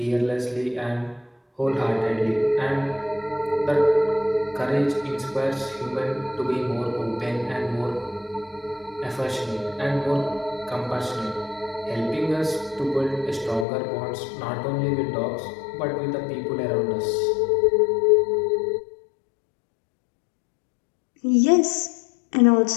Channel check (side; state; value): right; drops out; at 13.7 s